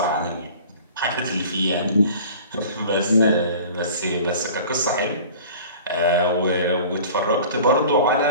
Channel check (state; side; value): inverted; both; correlation -0.43